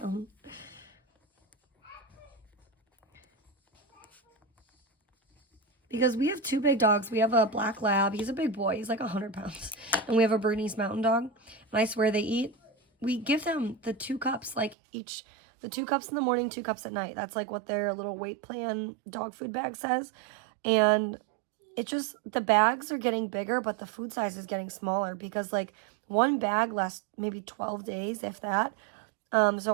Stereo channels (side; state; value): left; drops out; at 14.8 s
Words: Because we have 2 big dogs. We have a black lab. He's a big boy. He's like 100 pounds. And we have a Bernese Mountain Dog. And I swear they eat. We give them the 2 cups, like each, the 2 cups in the morning, 2 cups at night. That's like what their little weight plan dog food bag says. And it just, the bags are getting bigger, but the food size is getting smaller because like one bag lasts maybe 12 days, if that. So